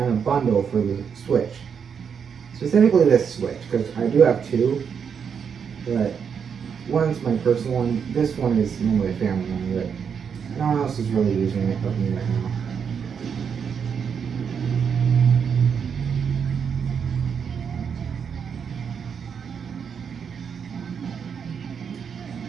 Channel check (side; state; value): left; quieter; 6.9 dB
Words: a bundle for the Switch. Specifically this Switch, because I do have two. But one's my personal one. This one is normally a family one, but no one else is really using it but me right now.